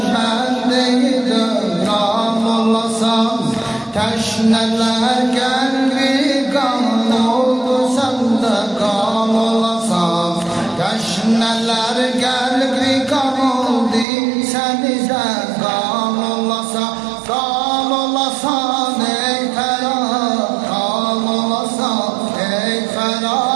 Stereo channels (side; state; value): left; drops out; at 14.1 s